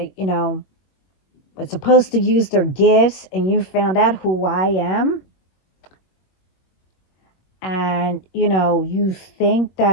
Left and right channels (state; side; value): late; right; 21 ms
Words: were supposed to use their gifts, and you found out who I am, and, you think